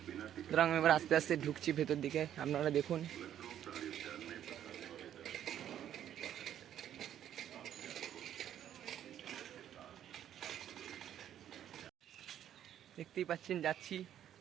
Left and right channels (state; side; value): quieter; left; 10.6 dB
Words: সুতরাং এবার আস্তে আস্তে ঢুকছি ভেতর দিকে, আপনারা দেখুন। দেখতেই পাচ্ছেন যাচ্ছি,